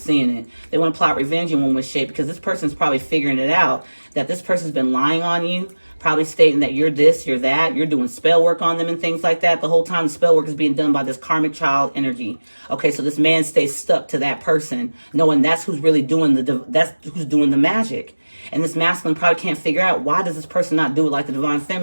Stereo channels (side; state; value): both; inverted; correlation -1.00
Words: it. They want to plot revenge in one way, shape, because this person's probably figuring it out, that this person's been lying on you, probably stating that you're this, you're that, you're doing spell work on them and things like that. The whole time the spell work is being done by this karmic child energy. Okay, so this man stays stuck to that person, knowing that's who's really doing the magic. And this masculine probably can't figure out, why does this person not do it like the divine